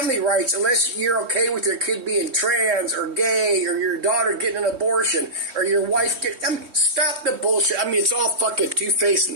rights unless you're okay with your kid being trans or gay or your daughter getting an abortion or your wife stop the bullshit. I mean, it's all fucking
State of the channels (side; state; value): left; late; 3.2 ms